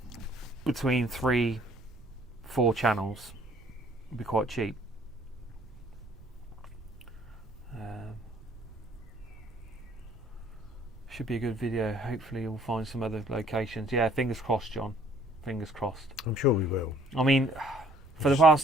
between 3-4 channels would be quite cheap. Should be a good video. Hopefully we'll find some other locations. Yeah, fingers crossed, John. Fingers crossed. I'm sure we will. I mean, for the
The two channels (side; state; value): right; noise; rumble, 19 dB below the sound